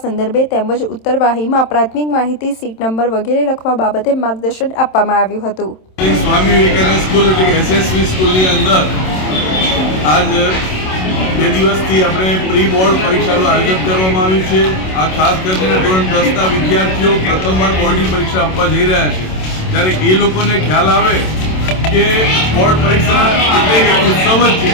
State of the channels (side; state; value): right; late; 27 ms